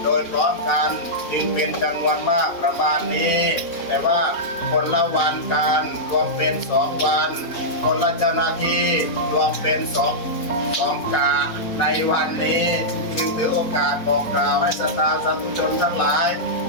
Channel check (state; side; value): late; right; 4.1 ms